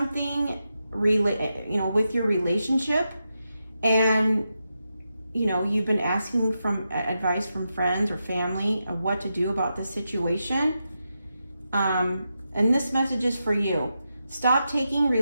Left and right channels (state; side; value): inverted; both; correlation -0.87